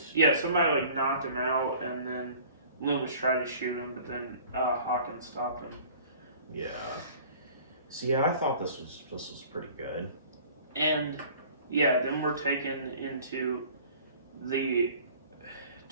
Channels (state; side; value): inverted; both; correlation -0.48